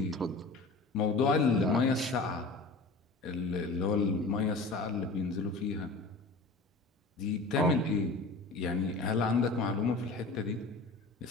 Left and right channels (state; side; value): quieter; right; 3.4 dB